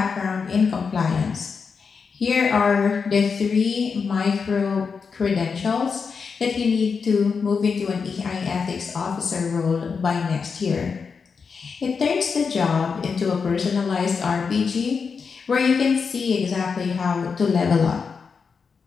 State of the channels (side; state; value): right; quieter; 5.5 dB